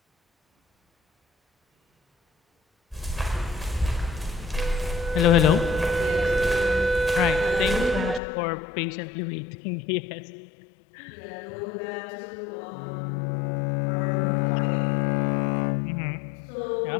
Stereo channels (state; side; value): drops out; right; at 8.2 s